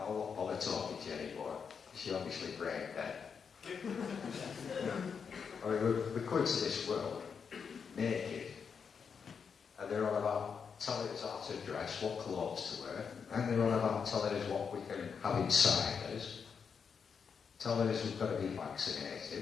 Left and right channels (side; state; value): right; quieter; 6.3 dB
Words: won't bother talking to you anymore. She obviously brain dead. I mean, we come into this world naked, and they're on about telling us how to dress, what clothes to wear, and they're on about telling us what we can have inside us, telling us we've got to be